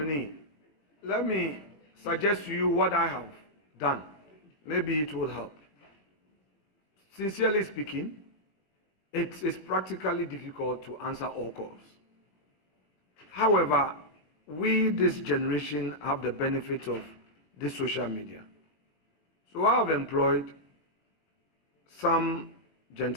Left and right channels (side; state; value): right; late; 20 ms